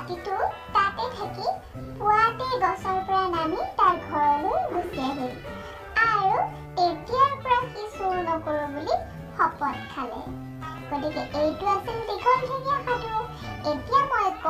তাতে থাকি পুৱাতেই গছৰ পৰা নামি তাৰ ঘৰলৈ গুচি আহিল আৰু এতিয়াৰ পৰা সি চোৰ নকৰো বুলি শপত খালে। গতিকে এইটো আছিল দীঘল ঠেঙীয়া সাধু। এতিয়া মই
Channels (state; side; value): identical; both; correlation 1.00